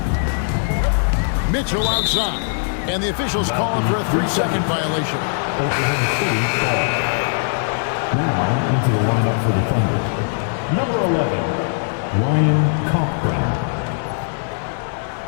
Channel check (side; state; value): right; silent; 66 dB below the other